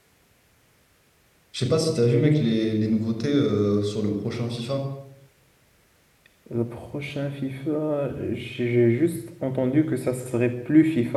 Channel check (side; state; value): both; identical; correlation 1.00